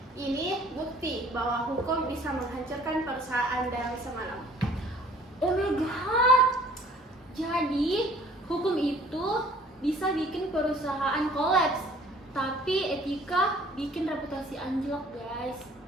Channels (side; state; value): both; normal; correlation 0.54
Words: Ini bukti bahwa hukum bisa menghancurkan perusahaan dalam semalam. Oh my god. Jadi, hukum itu bisa bikin perusahaan kolaps, tapi etika bikin reputasi anjlok, guys.